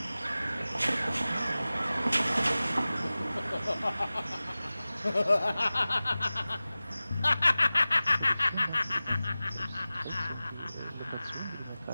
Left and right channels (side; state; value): both; inverted; correlation -0.97